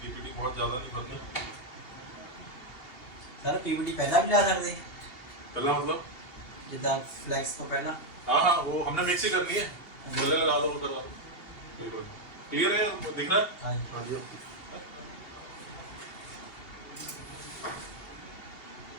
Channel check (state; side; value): late; right; 2.8 ms